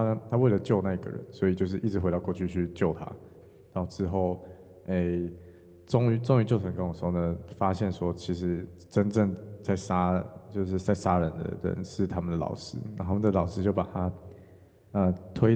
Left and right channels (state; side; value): identical; both; correlation 1.00